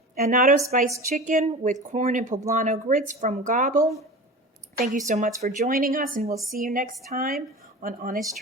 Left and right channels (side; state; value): both; normal; correlation 0.33